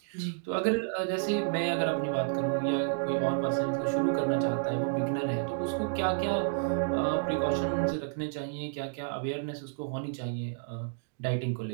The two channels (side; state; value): left; silent; digital silence